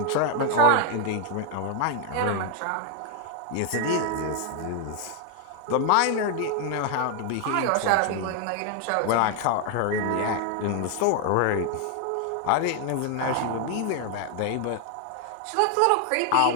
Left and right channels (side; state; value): both; different; correlation 0.00